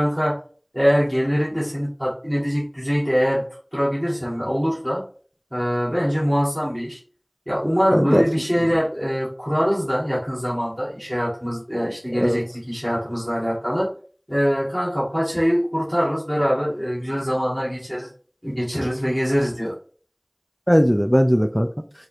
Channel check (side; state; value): both; identical; correlation 1.00